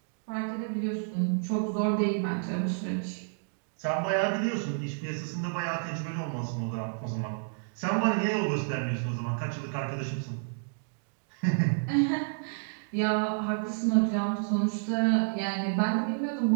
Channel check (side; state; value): left; silent; digital silence